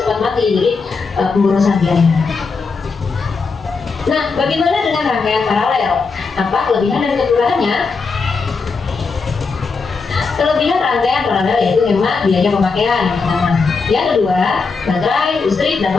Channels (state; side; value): quieter; right; 4.7 dB